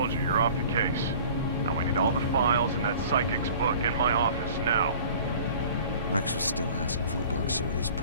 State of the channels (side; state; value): both; inverted; correlation -0.46